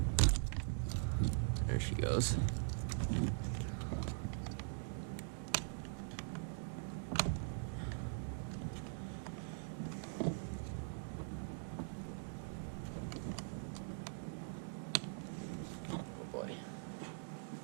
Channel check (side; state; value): left; silent; digital silence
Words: There she goes.